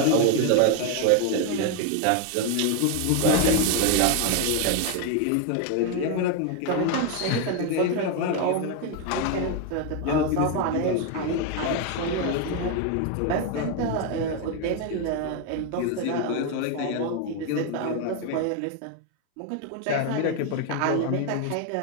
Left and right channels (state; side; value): different; both; correlation 0.01